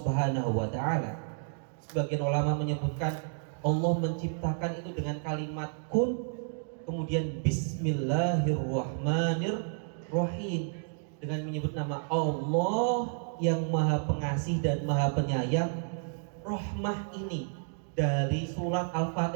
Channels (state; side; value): silent; left; 57 dB below the other